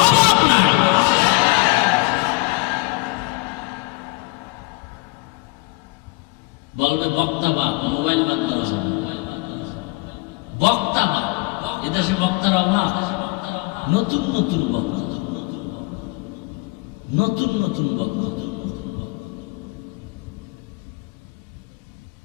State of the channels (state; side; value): quieter; right; 25.7 dB